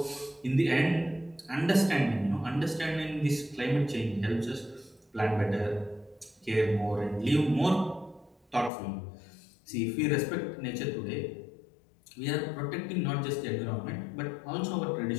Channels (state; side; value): drops out; right; at 8.7 s